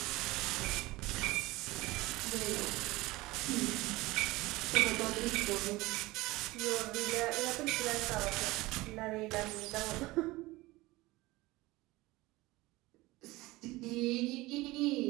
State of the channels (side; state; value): left; quieter; 20.3 dB